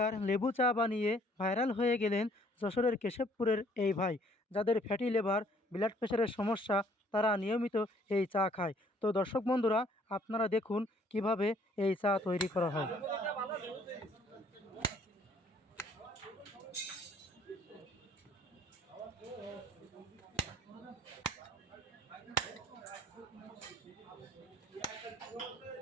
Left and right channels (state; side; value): normal; both; correlation 0.61